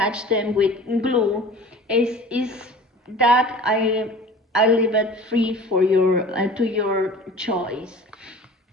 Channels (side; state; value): both; normal; correlation 0.42